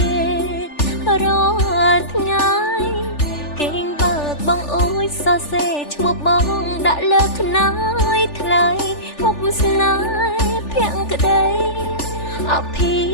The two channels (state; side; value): late; right; 3.4 ms